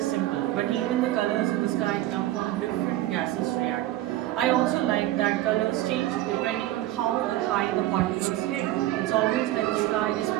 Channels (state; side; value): quieter; left; 15.2 dB